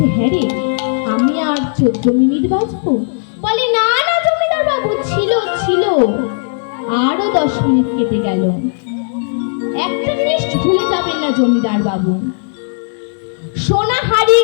হ্যাঁ রে, আমি আর 14 মিনিট বাজবো? বলে না না জমিদার বাবু, ছিল ছিল, আরো 10 মিনিট কেটে গেল। একটা জিনিস ভুলে যাবেন না জমিদার বাবু, সোনা হারিয়ে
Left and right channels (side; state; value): right; silent; digital silence